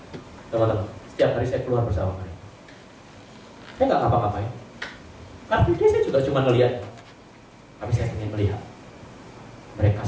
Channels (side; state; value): both; identical; correlation 1.00